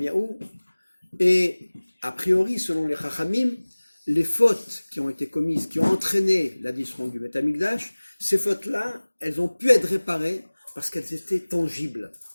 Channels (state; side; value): inverted; both; correlation -1.00